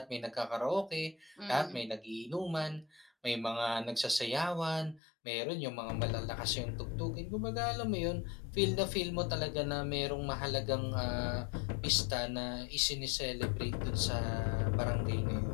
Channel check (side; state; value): right; drops out; at 5.0 s